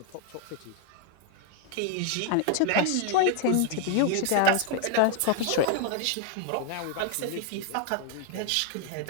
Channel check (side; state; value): both; different; correlation 0.00